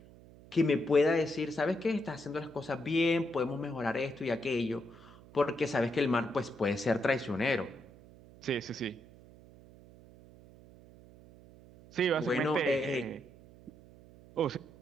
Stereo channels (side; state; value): right; noise; hum, 22 dB below the sound